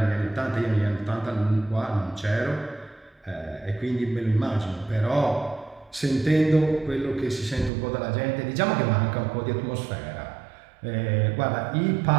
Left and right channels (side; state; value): left; drops out; at 7.7 s